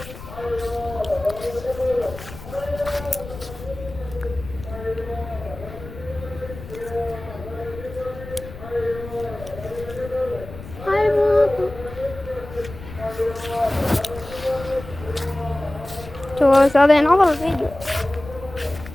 شوف هذا ينعرض الفيديو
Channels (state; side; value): noise; left; rumble, 14 dB below the sound